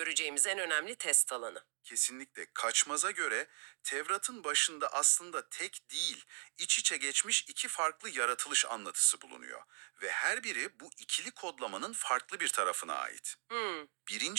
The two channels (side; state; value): left; silent; 52 dB below the other